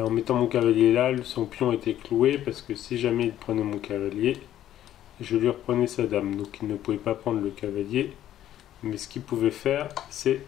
mettant mon cavalier là, son pion était cloué parce que si jamais il prenait mon cavalier, je lui reprenais sa dame. Donc il ne pouvait pas prendre le cavalier. Mais ce qu'il pouvait faire, c'est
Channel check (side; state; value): right; quieter; 12.0 dB